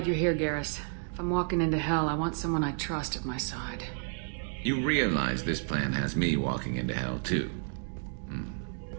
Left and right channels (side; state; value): left; silent; 57 dB below the other